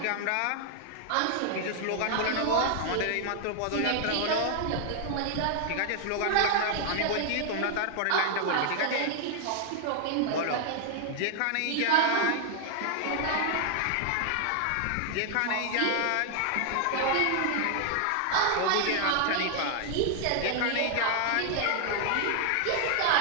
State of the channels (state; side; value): different; both; correlation 0.00